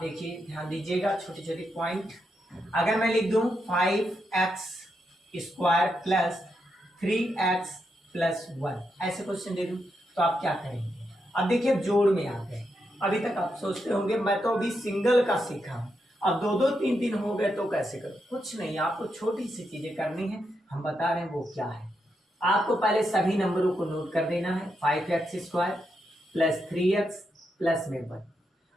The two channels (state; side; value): normal; both; correlation 0.83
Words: देखिए ध्यान दीजिएगा छोटे छोटे पॉइंट। अगर मैं लिख दूं 5x square plus 3x plus 1, ऐसे क्वेश्चन दे दूं तो आप क्या करेंगे। अब देखिए अब जोड़ में आ गए। अभी तक आप सोचते होंगे मैं तो अभी सिंगल का सीखा हूं, अब 2 2 3 3 हो गए तो कैसे करूं। कुछ नहीं, आपको छोटी सी चीजें करनी है, हम बता रहे हैं वो क्या है। आपको पहले सभी नंबरों को नोट कर देना है, 5x square plus 3x plus में 1।